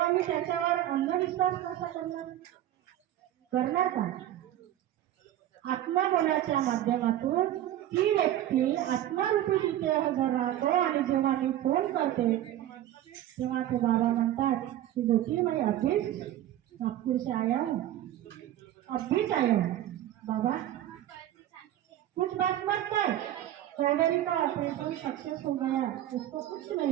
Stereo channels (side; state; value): left; quieter; 12.7 dB